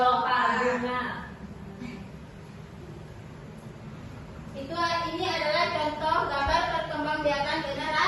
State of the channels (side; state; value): both; identical; correlation 1.00